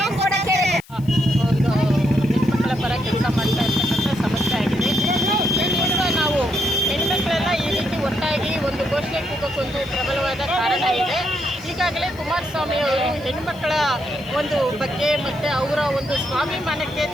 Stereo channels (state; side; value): noise; left; hiss, 25 dB below the sound